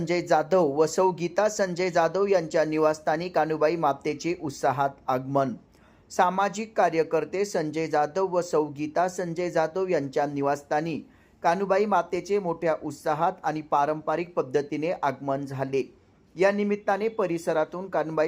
जाधव व सौ गीता संजय जाधव यांच्या निवासस्थानी कान्हूबाई मातेचे उत्साहात आगमन. सामाजिक कार्यकर्ते संजय जाधव व सौ गीता संजय जाधव यांच्या निवासस्थानी कान्हूबाई मातेचे मोठ्या उत्साहात आणि पारंपरिक पद्धतीने आगमन झाले. या निमित्ताने परिसरातून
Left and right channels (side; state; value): both; identical; correlation 1.00